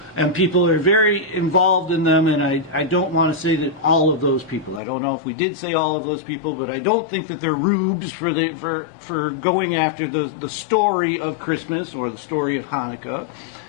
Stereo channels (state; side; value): drops out; right; at 4.8 s